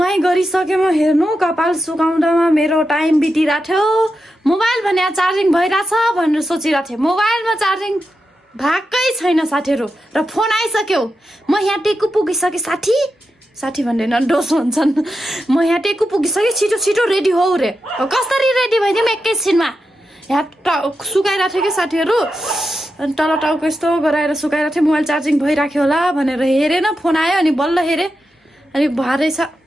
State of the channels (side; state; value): both; normal; correlation 0.89